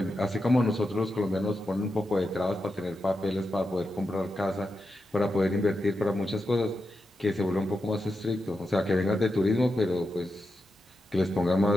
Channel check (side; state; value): both; normal; correlation 0.88